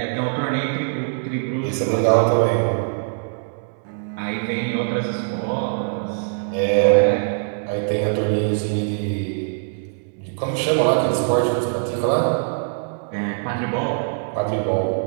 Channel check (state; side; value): silent; left; 64 dB below the other